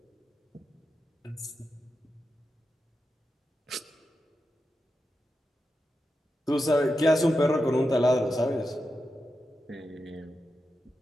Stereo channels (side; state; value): both; normal; correlation 0.89